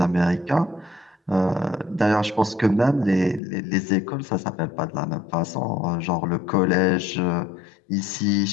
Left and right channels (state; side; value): drops out; right; at 3.4 s